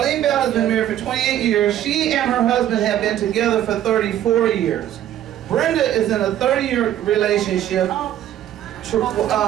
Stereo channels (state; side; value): quieter; left; 11.7 dB